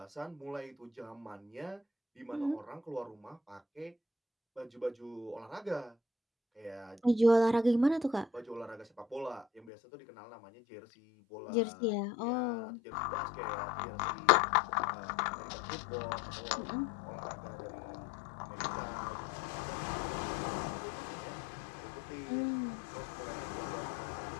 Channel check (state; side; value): drops out; right; at 9.7 s